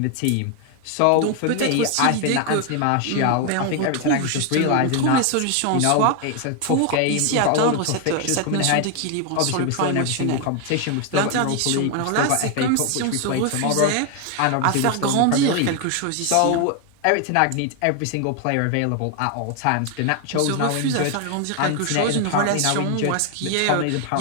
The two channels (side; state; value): both; different; correlation 0.01